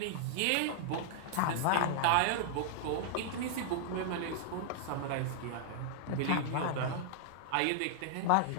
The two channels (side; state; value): both; different; correlation -0.01